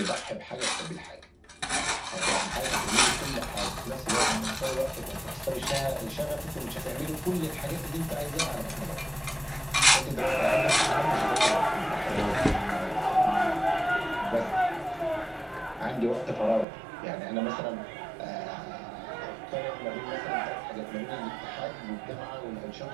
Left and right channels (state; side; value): drops out; left; at 16.7 s